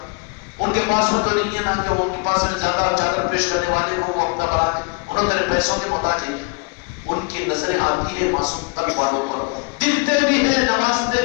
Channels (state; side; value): quieter; right; 34.6 dB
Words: ان کے پاس میں تو نہیں ہے نا کہ وہ ان کے پاس میں زیادہ چادر پیش کرنے والے کو وہ اپنا بنا دے، انہوں تیرے پیسوں کے محتاج ہیں۔ ان کی نظریں آتی ہے معصوم تک والوں پر، دکھتے بھی ہیں، نوازتے